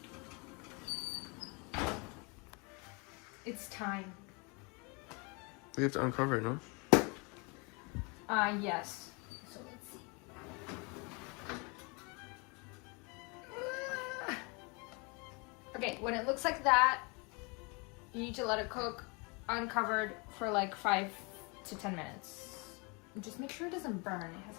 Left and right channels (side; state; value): right; quieter; 30.7 dB